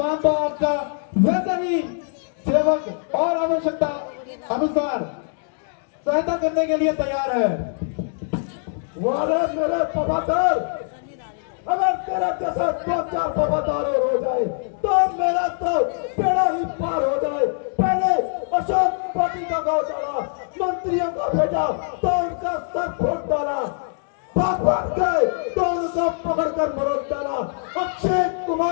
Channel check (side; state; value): right; silent; digital silence